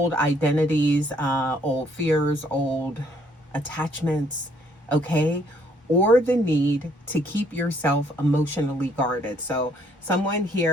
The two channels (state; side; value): normal; both; correlation 0.65